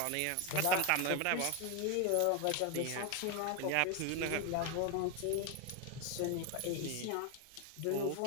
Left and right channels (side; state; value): both; different; correlation 0.01